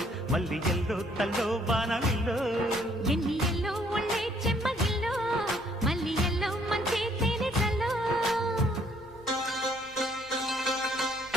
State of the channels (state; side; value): normal; both; correlation 0.65